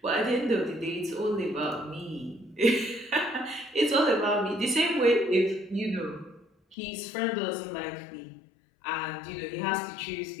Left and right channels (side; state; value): right; drops out; at 6.8 s